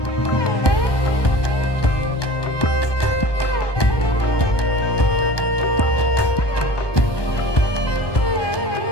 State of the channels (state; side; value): late; right; 1.2 ms